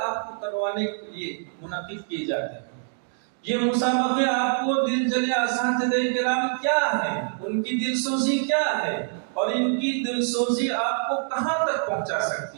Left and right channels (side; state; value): left; silent; digital silence